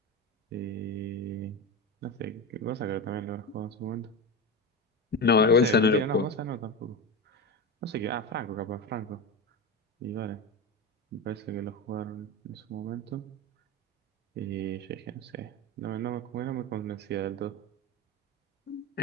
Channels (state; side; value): normal; both; correlation 0.21